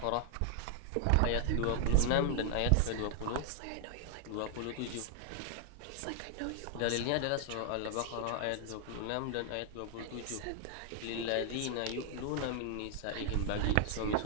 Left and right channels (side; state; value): both; different; correlation 0.00